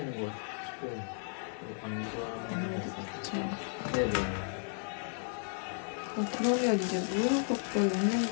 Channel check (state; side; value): silent; right; 55 dB below the other